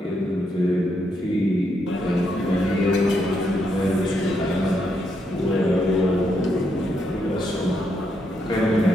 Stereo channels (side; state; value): both; normal; correlation 0.78